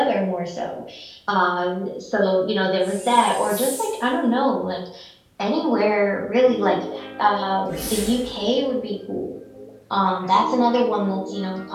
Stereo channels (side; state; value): both; identical; correlation 1.00